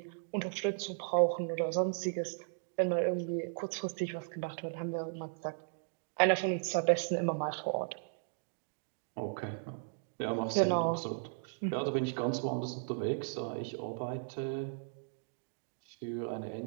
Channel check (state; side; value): silent; left; digital silence